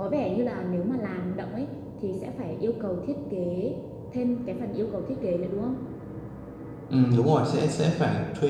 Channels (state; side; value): identical; both; correlation 1.00